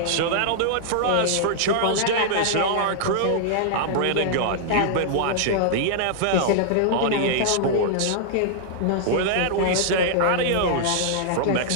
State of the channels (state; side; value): different; both; correlation -0.01